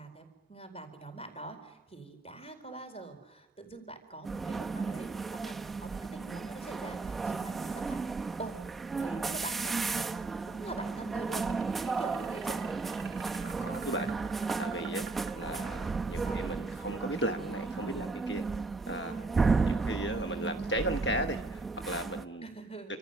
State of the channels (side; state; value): left; quieter; 3.3 dB